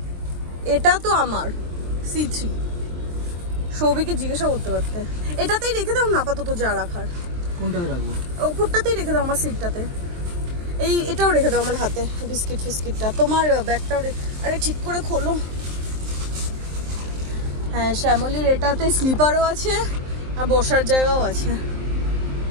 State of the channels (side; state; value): left; late; 23 ms